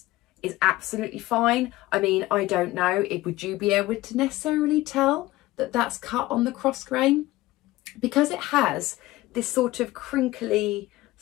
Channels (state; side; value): quieter; right; 17.8 dB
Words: is absolutely fine. I mean, I don't know, would you be able to necessarily tell that that's cut on the cross grain? Because it has this sort of crinkly